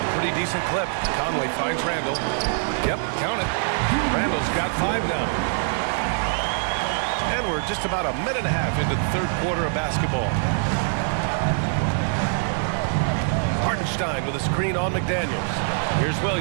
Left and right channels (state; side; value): silent; left; 63 dB below the other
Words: pretty decent clip. Conley finds Randle. Yep, count it. Randle's got 5 now. And we're just about a minute and a half into the third quarter of basketball. Hartenstein with a screen on McDaniels. Here's